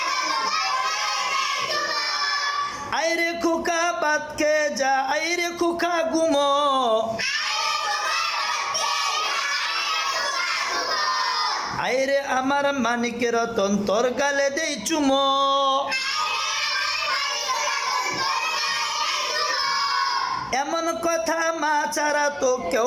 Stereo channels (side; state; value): both; identical; correlation 1.00